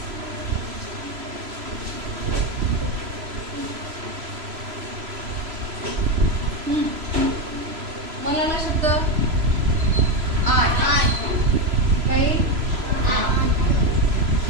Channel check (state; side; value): late; left; 3.0 ms